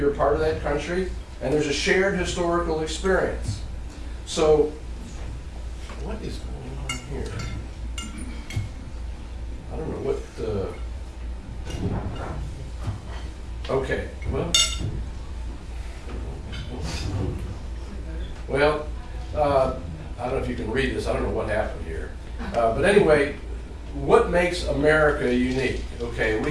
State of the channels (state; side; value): identical; both; correlation 1.00